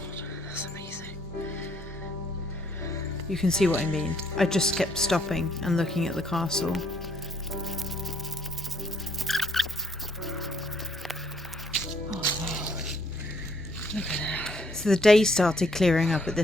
that's amazing. You can see what I mean. I just kept stopping and looking at the castle. Oh wow. Look at that. So the day started clearing up at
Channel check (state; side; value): normal; both; correlation 0.67